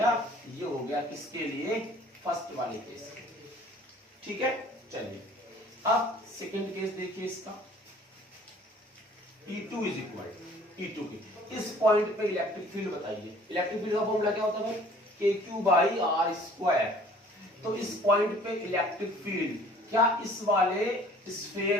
ये हो गया किसके लिए, फर्स्ट वाले केस, ठीक है। चलिए अब सेकंड केस देखिए इसका, E2 इज इक्वल E2 की, इस पॉइंट पे इलेक्ट्रिक फील्ड बताइए। इलेक्ट्रिक फील्ड का फॉर्मूला क्या होता है भाई, KQ बाई R स्क्वायर। तो इस पॉइंट पे इलेक्ट्रिक फील्ड क्या इस वाले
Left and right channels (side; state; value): both; normal; correlation 0.52